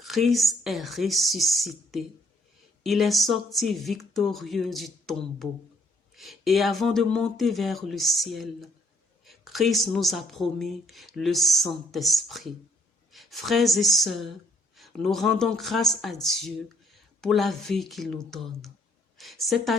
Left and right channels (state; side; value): normal; both; correlation 0.66